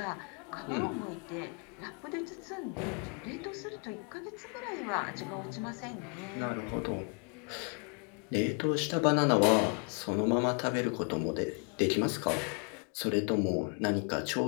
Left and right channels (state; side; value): quieter; right; 37.9 dB